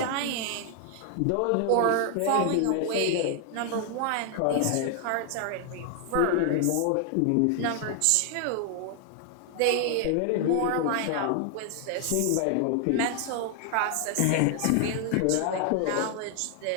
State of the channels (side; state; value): both; different; correlation 0.00